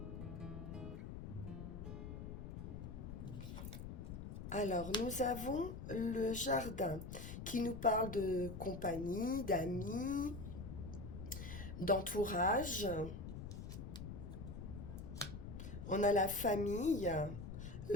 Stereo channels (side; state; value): left; noise; rumble, 8 dB below the sound